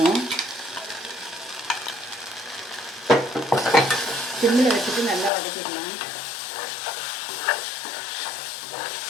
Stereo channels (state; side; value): drops out; right; at 5.3 s